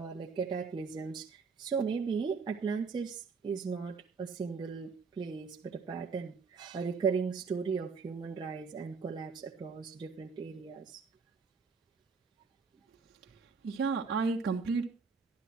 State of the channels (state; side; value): quieter; left; 5.1 dB